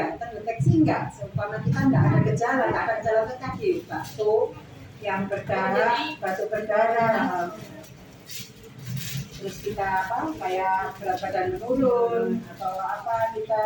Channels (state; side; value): identical; both; correlation 1.00